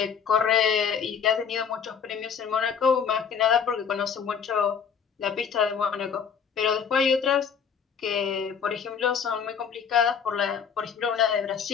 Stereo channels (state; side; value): quieter; right; 7.0 dB